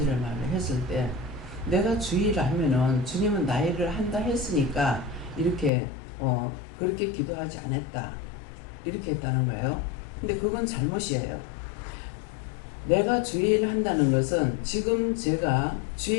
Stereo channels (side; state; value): right; drops out; at 5.7 s